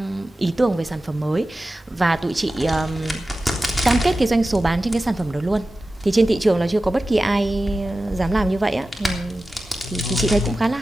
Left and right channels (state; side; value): normal; both; correlation 0.94